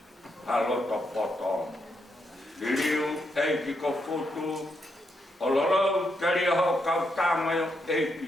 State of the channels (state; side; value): normal; both; correlation 0.80